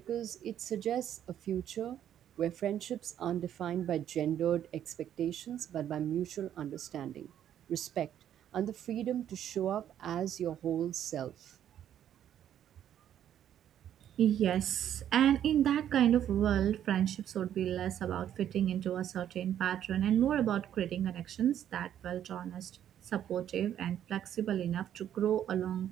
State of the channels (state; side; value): quieter; left; 10.4 dB